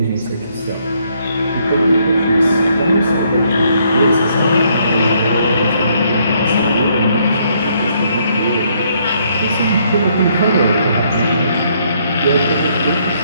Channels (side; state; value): both; inverted; correlation -0.70